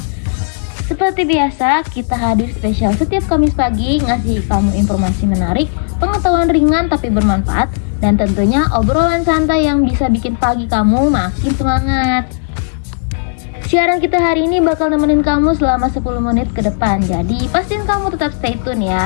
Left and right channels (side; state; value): right; silent; digital silence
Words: Seperti biasa, kita hadir spesial setiap Kamis pagi ngasih kamu informasi menarik, pengetahuan ringan tapi bermanfaat, dan tentunya obrolan santai yang bisa bikin pagi kamu makin semangat. Siaran kita hari ini bakal nemenin kamu selama 10 menit ke depan. Jadi pastiin kamu tetap stay tune